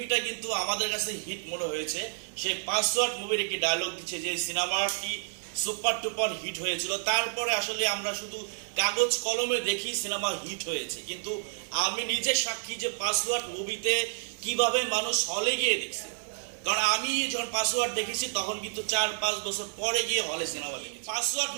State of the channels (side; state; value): left; silent; digital silence